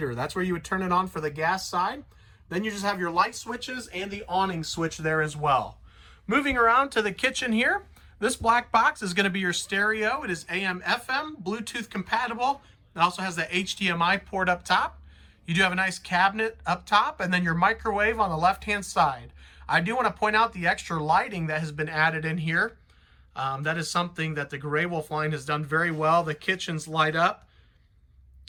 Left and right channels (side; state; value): both; identical; correlation 1.00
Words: That's where you would turn it on for the gas side. Then you just have your light switches and the awning switch there as well. Moving around to the kitchen here, this black box is going to be your stereo. It is AM, FM, Bluetooth compatible. It also has the HDMI port up top. You do have a nice cabinet up top, and then your microwave on the left-hand side. I do want to point out the extra lighting that has been added in here. That is something that the Grey Wolf line has done very well. The kitchens light up.